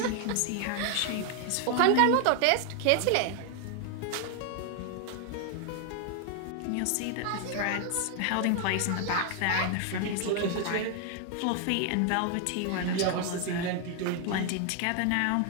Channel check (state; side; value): different; both; correlation 0.00